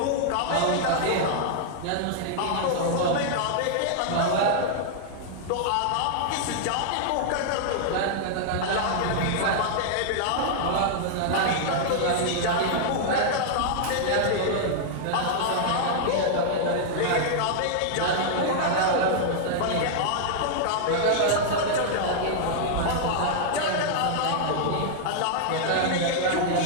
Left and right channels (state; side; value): different; both; correlation -0.01